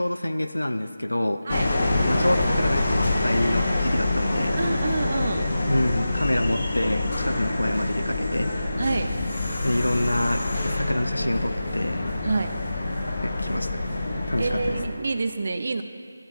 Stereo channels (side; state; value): both; inverted; correlation -0.93